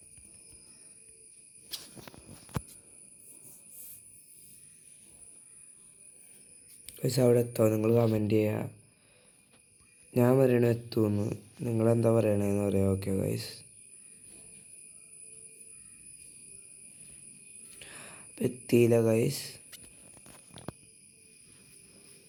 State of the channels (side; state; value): both; identical; correlation 1.00